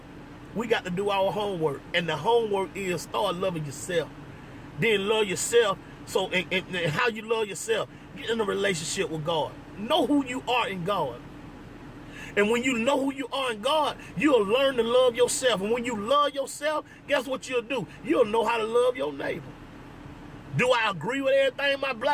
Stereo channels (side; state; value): both; identical; correlation 1.00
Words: we got to do our homework. And the homework is start loving yourself. Then love yourself. So and how you love yourself, get in a relationship with God. Know who you are in God. And when you know who you are in God, you'll learn to love yourself. And when you love yourself, guess what you'll do? You'll know how to love your neighbor. Do I agree with everything my